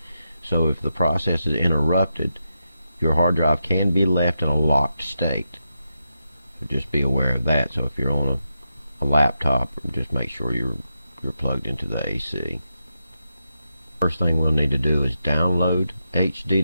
So if the process is interrupted, your hard drive can be left in a locked state. So just be aware of that. So if you're on a laptop, just make sure you're plugged into the AC. First thing we'll need to do is download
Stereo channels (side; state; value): both; inverted; correlation -0.86